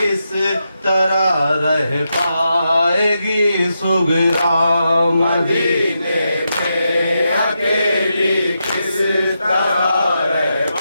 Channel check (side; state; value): both; inverted; correlation -0.85